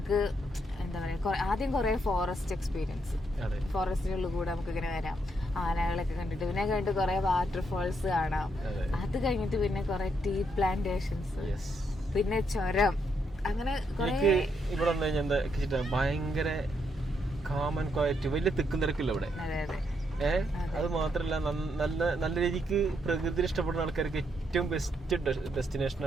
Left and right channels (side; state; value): both; normal; correlation 0.77